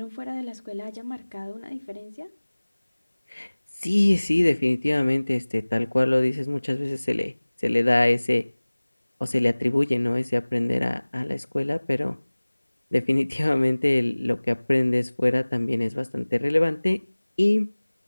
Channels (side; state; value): both; inverted; correlation -1.00